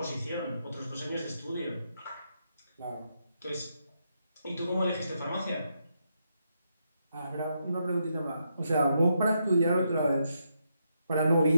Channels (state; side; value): inverted; both; correlation -0.80